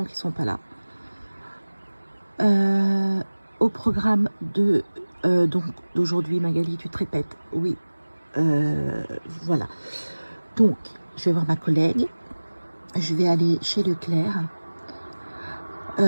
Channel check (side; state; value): both; inverted; correlation -1.00